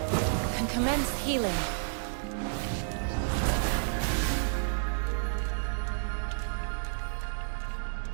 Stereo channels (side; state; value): left; silent; digital silence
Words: Can commence healing.